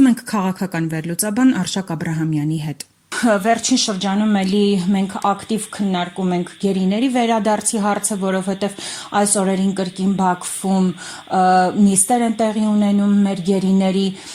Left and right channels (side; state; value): both; identical; correlation 1.00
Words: ենք քաղաքական վերլուծաբան Արշակ Աբրահամյանի հետ։ Վերջին շրջանում էլի մենք ակտիվ քննարկում ենք գերիների վերադարձի հարցը, որովհետև այս օրերին կրկին Բաքվում նիստեր են տեղի ունենում մեր գերիների։